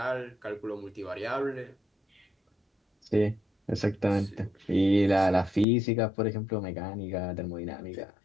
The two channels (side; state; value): right; drops out; at 5.7 s